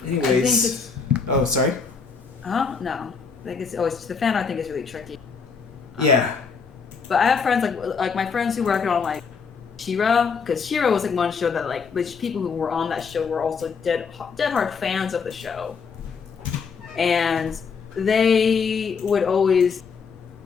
Anyways, oh sorry. No. I think it's always the fan art thing is really tricky. Yeah. But I have friends like my friends who work on like She-Ra, because She-Ra was like one show that like the people who were on that show were also dead hard fans of the show, and they would always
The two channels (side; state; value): right; quieter; 5.6 dB